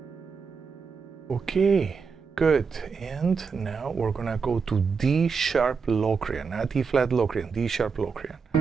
Okay, good. And now we're gonna go to D sharp Locrian, not E flat Locrian, D sharp Locrian.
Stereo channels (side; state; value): left; quieter; 5.5 dB